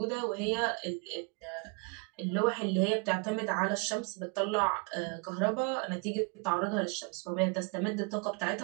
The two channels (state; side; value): quieter; left; 32.3 dB